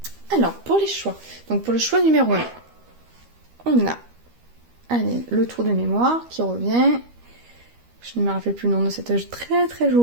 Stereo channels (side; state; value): left; late; 13 ms